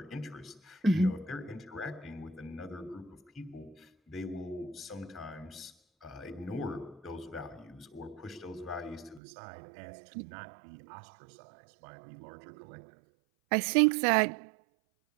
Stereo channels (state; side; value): drops out; left; at 9.2 s